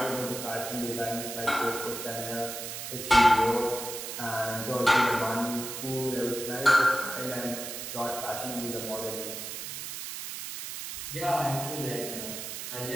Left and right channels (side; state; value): right; noise; hiss, 7 dB below the sound